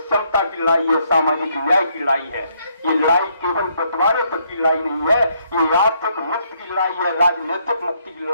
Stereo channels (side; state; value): both; inverted; correlation -0.72